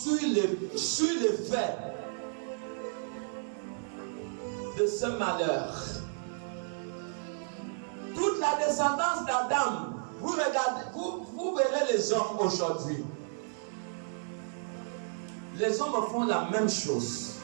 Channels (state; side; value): silent; left; digital silence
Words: l'effet de ce malheur. Toute la descendance d'Adam, vous regardez, vous verrez les hommes aujourd'hui. Les hommes font la même chose.